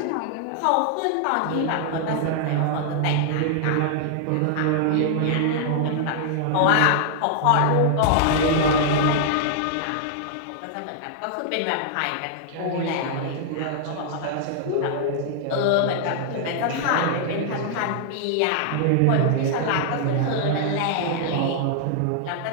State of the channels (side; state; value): both; different; correlation -0.01